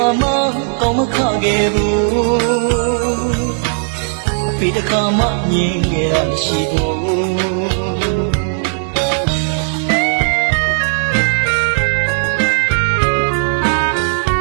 ါမှကောင်းမခခဲ့ဘူးအဖေတစ်ခါမှမြင်ခဲ့ရမရှိဘူး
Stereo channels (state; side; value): silent; left; 69 dB below the other